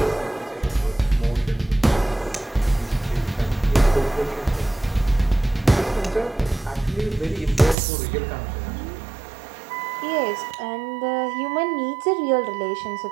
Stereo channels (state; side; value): drops out; left; at 7.8 s